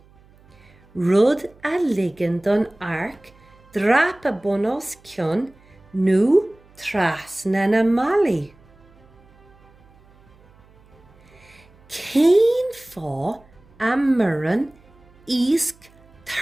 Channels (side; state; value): right; noise; hum, 28 dB below the sound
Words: Rud a ligean don arc drapa bun os cionn nó trasna na malaí. Cén fá a murran ísc